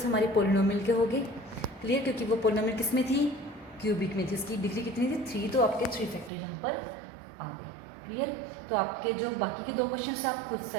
हमारे पोलिनोमियल के हो गए। क्लियर, क्योंकि वो पोलिनोमियल किस में थी, क्यूबिक में थी, इसकी डिग्री कितनी थी 3, तो आपके 3 फैक्टर यहाँ पर आ गए। क्लियर। तो आपके जो बाकी के 2 क्वेश्चन आप खुद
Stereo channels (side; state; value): left; drops out; at 6.3 s